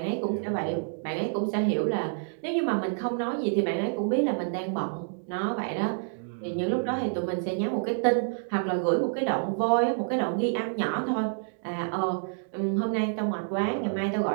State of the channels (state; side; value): silent; left; digital silence